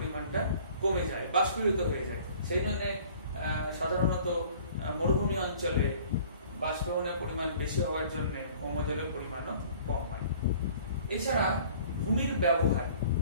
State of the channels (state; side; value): inverted; both; correlation -0.51